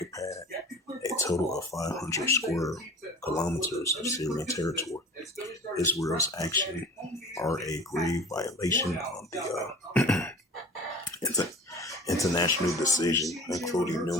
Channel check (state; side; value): normal; both; correlation 0.41